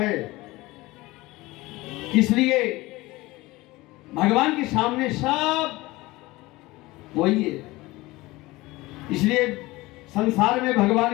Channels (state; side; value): quieter; right; 20.3 dB